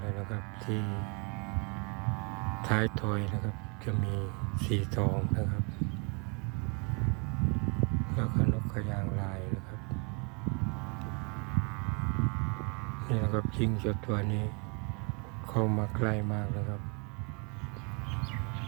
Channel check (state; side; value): quieter; left; 36.1 dB